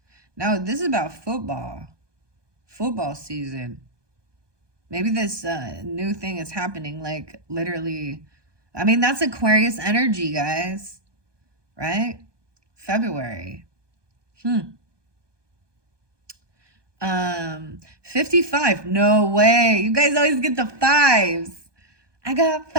Now, this is about football. Football season. Maybe this new thing is happening, like literally. I mean, that's Aquarius energy, guys. Right? February. 55. No way. You guys always get the fives. I got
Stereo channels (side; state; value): left; late; 1.2 ms